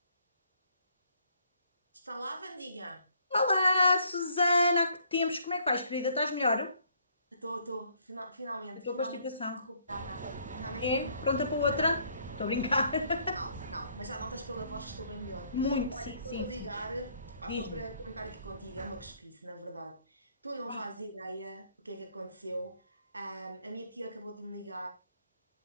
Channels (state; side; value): inverted; both; correlation -0.66